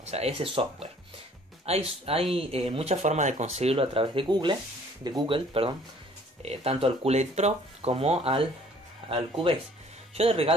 o sea, ese software. Hay muchas formas de conseguirlo a través de Google, tanto al Cool Edit Pro como al Cubase. Yo de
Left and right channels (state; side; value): normal; both; correlation 0.56